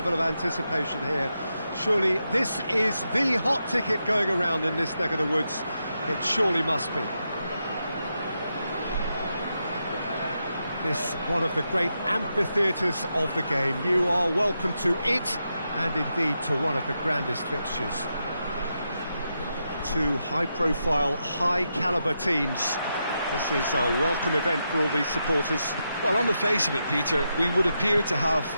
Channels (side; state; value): both; inverted; correlation -0.85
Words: of anticipation here. Surely this is the hot ticket going around in this neck of the woods. It surely must be. This one of the great amphitheatres of the game. You are welcome to it, and indeed to one of the grandest fixtures. Two high-profile, high-calibre teams. This is a welcome event for all these supporters. Well, on the face of it, Peter, we would appear to have